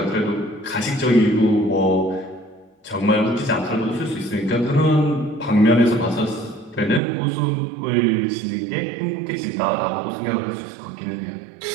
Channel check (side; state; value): left; drops out; at 7.0 s